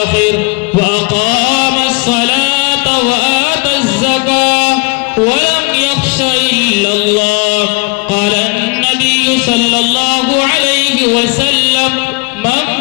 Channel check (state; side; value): quieter; right; 29.8 dB